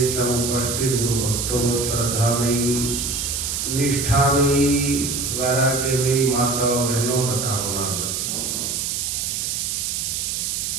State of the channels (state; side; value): noise; right; hiss, 1 dB below the sound